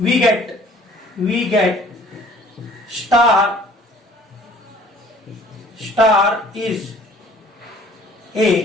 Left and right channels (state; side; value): normal; both; correlation 0.54